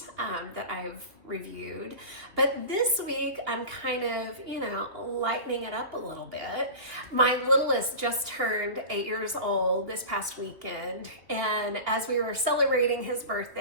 that I've reviewed, but this week I'm kind of, lightening it up a little bit. My littlest just turned 8 years old this past weekend, and as we were celebrating his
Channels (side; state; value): left; late; 2.9 ms